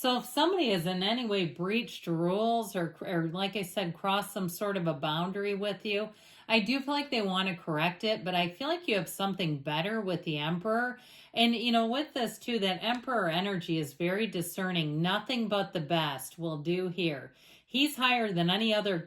if somebody has in any way breached rules or like I said, crossed some sort of a boundary with you, I do feel like they want to correct it, but I feel like you have something better with the Emperor. And, you know, with this too, that Emperor energy is very discerning. Nothing but the best will do here. He's higher than any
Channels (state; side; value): identical; both; correlation 1.00